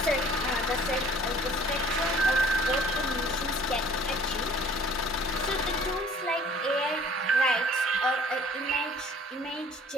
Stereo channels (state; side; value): normal; both; correlation 0.52